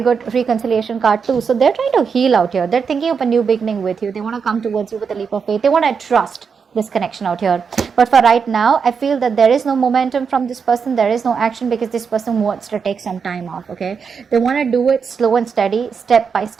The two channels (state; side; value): quieter; left; 6.0 dB